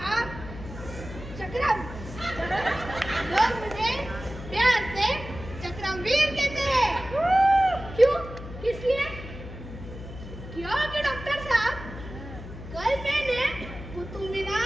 चक्रम। लोग मुझे प्यार से चक्रमवीर कहते हैं। क्यों? किस लिए? क्योंकि डॉक्टर साहब, कल मैंने कुतुब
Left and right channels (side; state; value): left; noise; hum, 12 dB below the sound